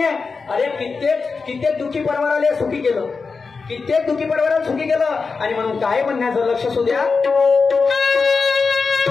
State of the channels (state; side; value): quieter; right; 4.7 dB